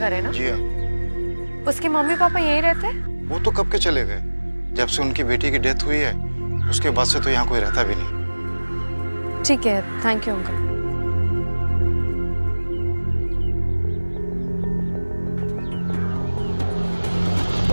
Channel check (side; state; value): both; inverted; correlation -1.00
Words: है ना? जी हाँ। उसके मम्मी पापा यहीं रहते हैं? वो तो कब के चले गए, जब से उनकी बेटी की डेथ हुई है उसके बाद से तो यहाँ कोई रहता भी नहीं। ठीक है, thank you uncle.